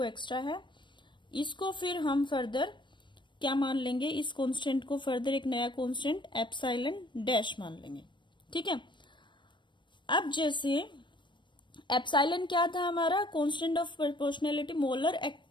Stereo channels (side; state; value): right; late; 0.23 ms